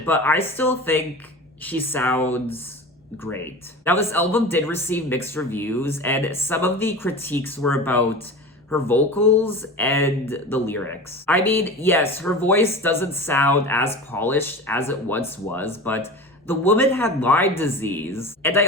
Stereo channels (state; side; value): normal; both; correlation 0.33